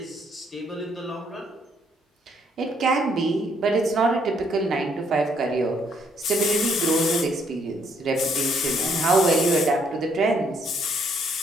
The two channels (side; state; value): both; normal; correlation 0.69